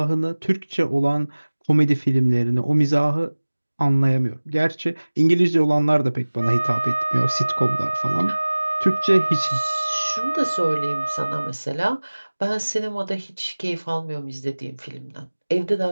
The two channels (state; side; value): inverted; both; correlation -1.00